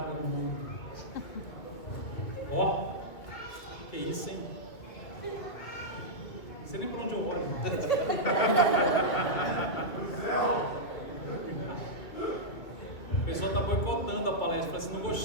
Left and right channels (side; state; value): right; late; 2.5 ms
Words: no mundo. Ó. Que isso, hein? Não sei nem por onde eu olho. O pessoal está boicotando a palestra. Fala assim, não